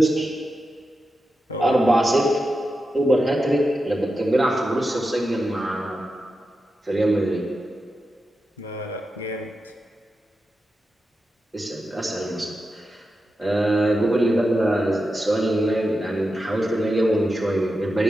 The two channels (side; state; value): both; normal; correlation 0.90